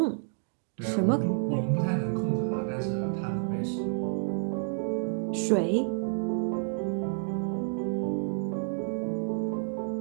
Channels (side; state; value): left; silent; digital silence